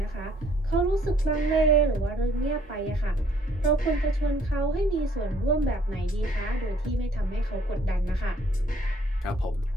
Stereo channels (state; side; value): normal; both; correlation 0.63